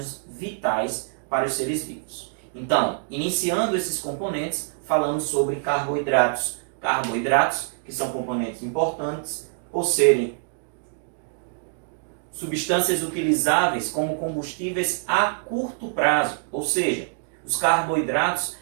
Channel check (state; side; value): silent; left; digital silence